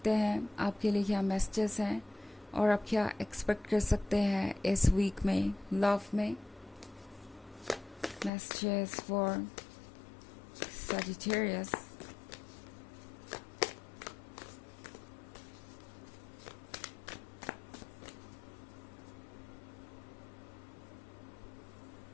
हैं आपके लिए क्या मैसेजेस हैं और आप क्या एक्सपेक्ट कर सकते हैं इस वीक में लव में। Messages for Sagittarius.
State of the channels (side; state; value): right; drops out; at 8.3 s